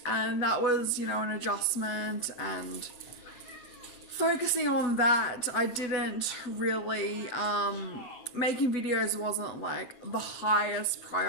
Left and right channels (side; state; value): right; late; 8.2 ms